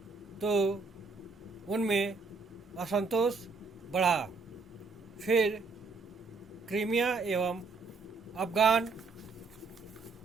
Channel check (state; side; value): quieter; left; 4.3 dB